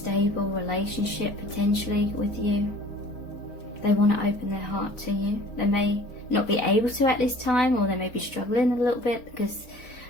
relationship potentially with you. They want to open their heart to you. They may not be able to at this time, or they may be struggling a little bit because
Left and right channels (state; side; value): late; right; 4.4 ms